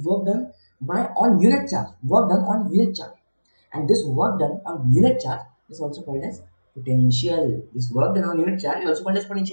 work done by on unit charge. Work done on unit charge, and this work done on unit charge is also called as potential. This work done on unit charge is also called as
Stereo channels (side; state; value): both; inverted; correlation -1.00